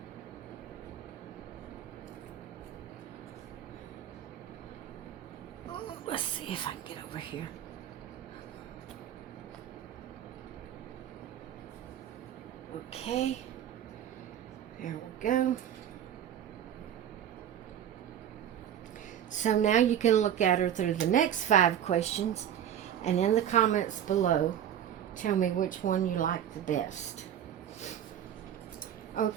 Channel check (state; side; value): quieter; left; 10.1 dB